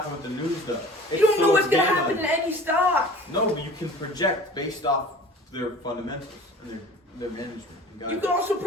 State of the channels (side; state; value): both; normal; correlation 0.44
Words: with the news, though. You don't know what's going to happen in any stock. No, but you can project based off their fundamentals and their management. You can also